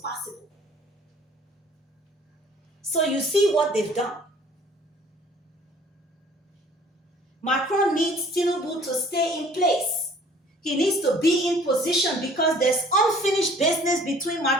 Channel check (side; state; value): both; normal; correlation 0.53